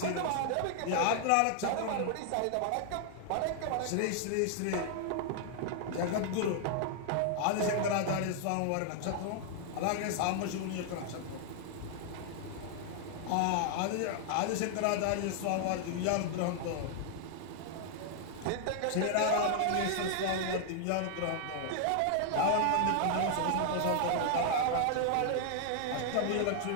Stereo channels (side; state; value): both; different; correlation 0.00